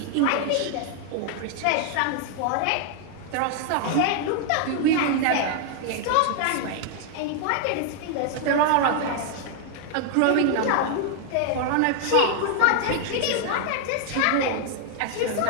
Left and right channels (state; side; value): different; both; correlation 0.00